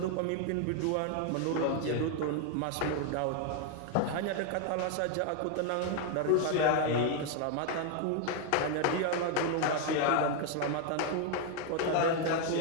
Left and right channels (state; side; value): different; both; correlation 0.01